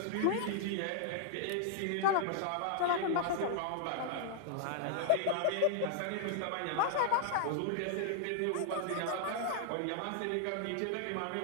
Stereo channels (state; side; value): different; both; correlation 0.00